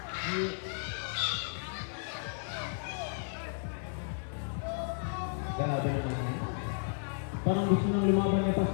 Grabe naman yan. Parang gusto nang lumaban ni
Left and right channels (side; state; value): right; silent; digital silence